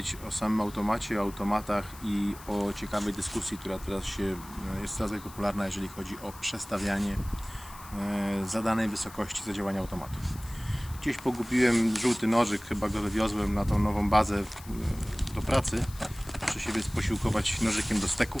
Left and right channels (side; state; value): left; noise; hiss, 18 dB below the sound